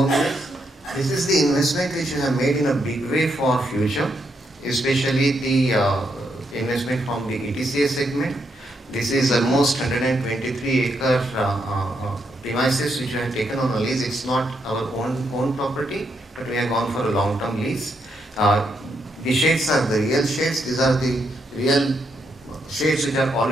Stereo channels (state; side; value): normal; both; correlation 0.79